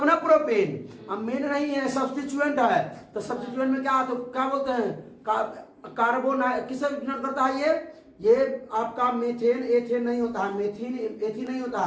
ना प्रोपेन, अब मेन नहीं है, सब्स्टिट्यूएंट है। तो सब्स्टिट्यूएंट में क्या, तो क्या बोलते हैं? कार्बोन किसे डिनोट करता है? ये आपका मेथेन एथेन नहीं होता है, मेथिन एथिन नहीं होता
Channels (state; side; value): identical; both; correlation 1.00